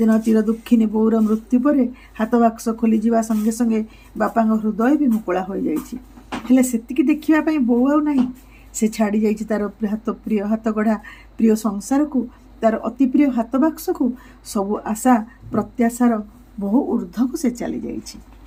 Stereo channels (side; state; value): both; identical; correlation 1.00